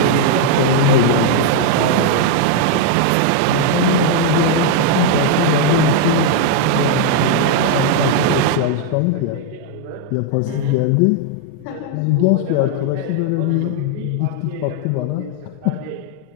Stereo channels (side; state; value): both; different; correlation 0.00